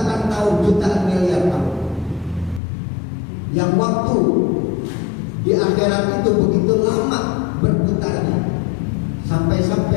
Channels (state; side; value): drops out; right; at 2.6 s